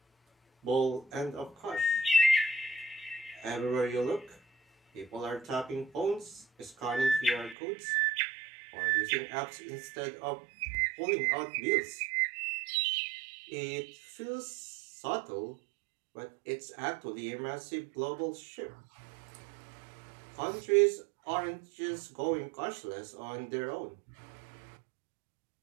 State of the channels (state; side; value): drops out; left; at 7.6 s